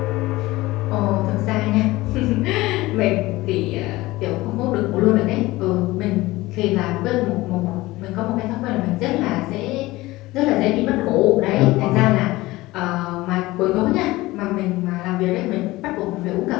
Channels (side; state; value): right; quieter; 19.2 dB